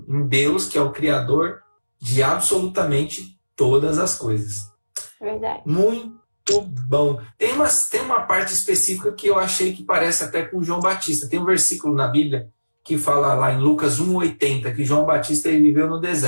Deus, que é o Criador de absolutamente todas as coisas. Verdade. Muito bom. Tem uma parte específica que eu achei que parece até com João Batista. Tem um versículo na Bíblia que fala lá em Lucas 1,80 que João Batista ele viveu no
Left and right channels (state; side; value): inverted; both; correlation -1.00